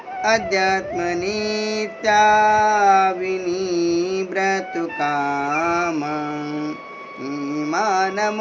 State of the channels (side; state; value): both; identical; correlation 1.00